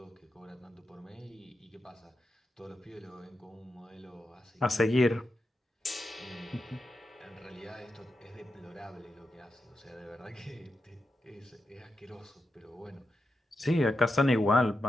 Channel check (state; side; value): normal; both; correlation 0.88